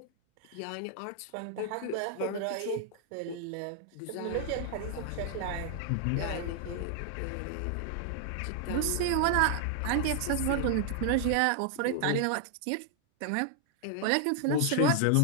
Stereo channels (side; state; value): both; different; correlation 0.00